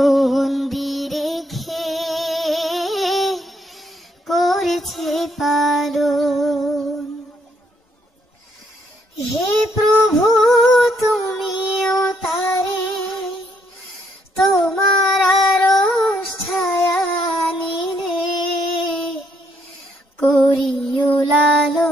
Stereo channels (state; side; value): normal; both; correlation 0.72